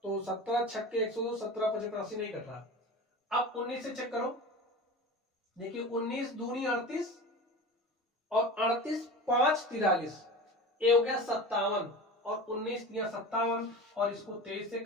तो 17 छक्के 102, 17 5 85 नहीं कट रहा। अब 19 से चेक करो, देखिए 19 दूनी 38 और 38 5 43, ये हो गया 57, और 19 दिया 57, और इसको 23 से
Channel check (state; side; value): normal; both; correlation 0.32